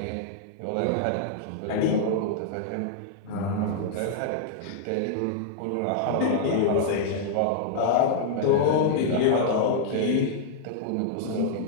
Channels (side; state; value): both; different; correlation -0.01